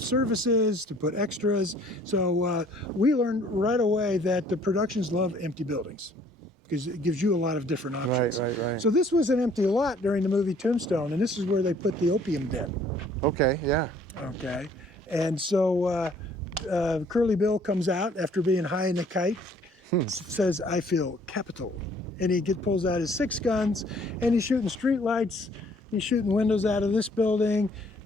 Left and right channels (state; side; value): normal; both; correlation 0.59